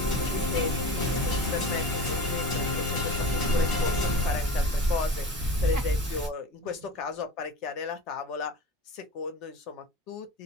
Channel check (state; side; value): normal; both; correlation 0.34